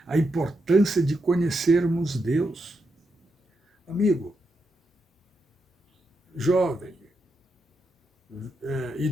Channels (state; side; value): normal; both; correlation 0.84